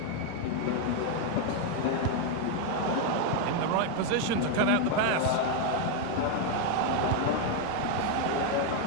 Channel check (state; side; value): different; both; correlation 0.01